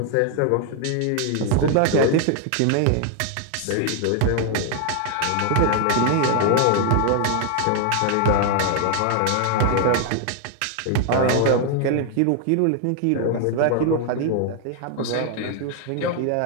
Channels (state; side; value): different; both; correlation 0.00